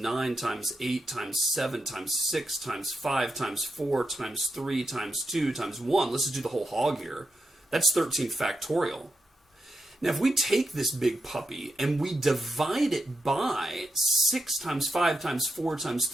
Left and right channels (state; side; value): normal; both; correlation 0.85